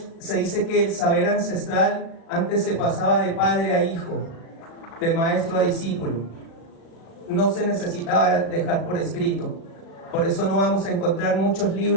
se dice que el saber ancestral antes se pasaba de padre a hijo, de maestro a discípulo. No se necesitaba dejar por escrito. Por eso no vamos a encontrar muchos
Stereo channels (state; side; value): late; right; 36 ms